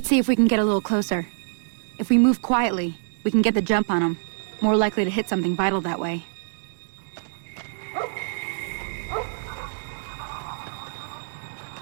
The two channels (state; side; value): silent; left; 61 dB below the other